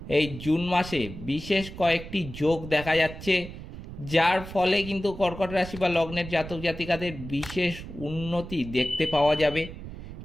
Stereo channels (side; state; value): right; noise; rumble, 12 dB below the sound